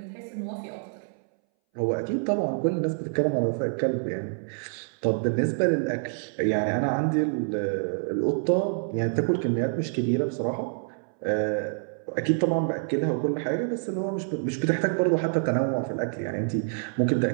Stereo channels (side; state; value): left; silent; 60 dB below the other